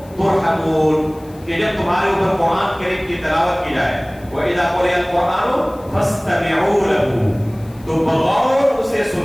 تُرْحَمُونَ. کہ جب تمہارے اوپر قرآن کریم کی تلاوت کی جائے وَإِذَا قُرِئَ الْقُرْآنُ فَاسْتَمِعُوا لَهُ، تو بغور اسے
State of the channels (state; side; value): noise; left; hiss, 27 dB below the sound